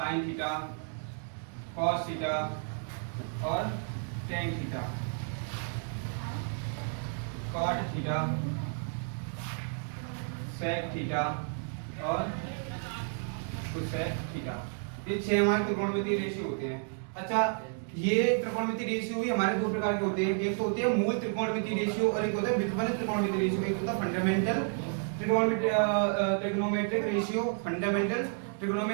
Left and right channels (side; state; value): left; silent; 57 dB below the other